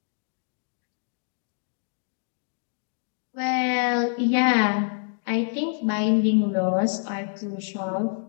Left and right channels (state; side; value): silent; right; 61 dB below the other